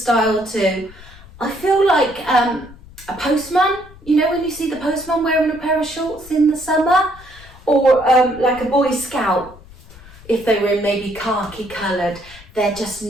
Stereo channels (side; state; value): left; noise; rumble, 21 dB below the sound